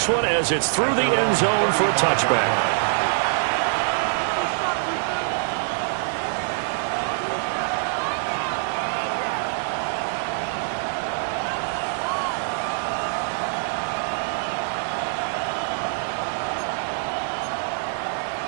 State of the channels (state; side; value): silent; left; 56 dB below the other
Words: one as it's through the end zone for a touchback.